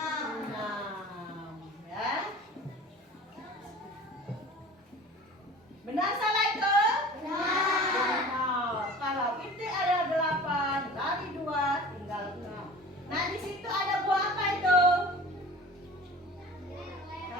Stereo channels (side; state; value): both; normal; correlation 0.41